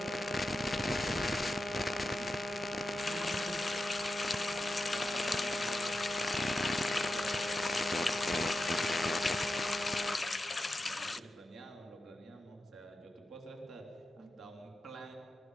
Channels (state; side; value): normal; both; correlation 0.90